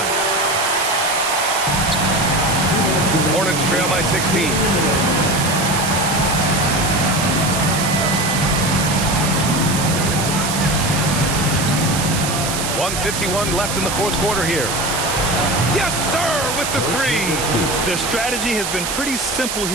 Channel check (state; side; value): noise; right; hiss, 3 dB below the sound